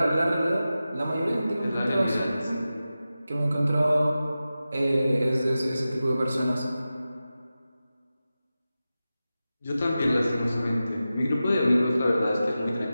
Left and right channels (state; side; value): inverted; both; correlation -0.94